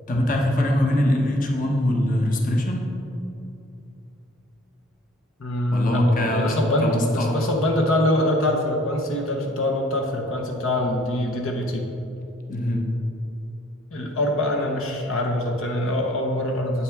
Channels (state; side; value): normal; both; correlation 0.58